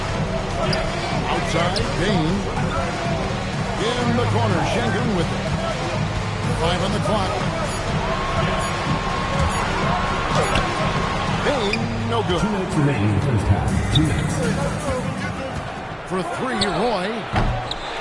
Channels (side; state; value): both; identical; correlation 1.00